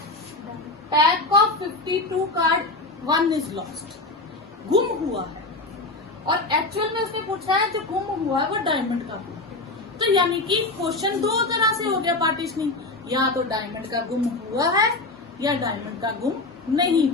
pack of 52 card 1 is lost. गुम हुआ है. और एक्चुअल में उसने पूछा है जो गुम हुआ है वो डायमंड का हुआ. तो यानी कि क्वेश्चन 2 तरह से हो गया पार्टीशनिंग. या तो डायमंड का गुम हुआ है या डायमंड का गुम नहीं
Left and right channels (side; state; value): right; quieter; 3.1 dB